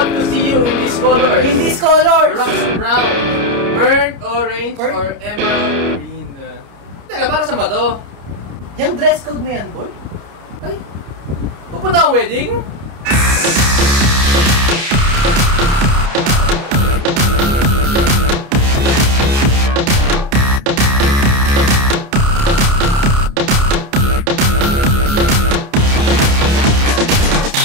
to see you in these colors. In these colors! Rust brown, burnt orange, or emerald green. Teka, para saan ba to? Yung dress code na yan, boy? Ay, pupunta ang wedding?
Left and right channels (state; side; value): late; left; 29 ms